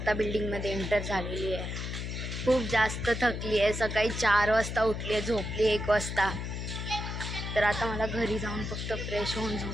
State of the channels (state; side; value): noise; left; hum, 5 dB below the sound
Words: बिल्डिंगमध्ये एंटर झालेली आहे. खूप जास्त थकली आहे. सकाळी 4 वाजता उठली आहे, झोपली 1 वाजता. तर आता मला घरी जाऊन फक्त फ्रेश होऊन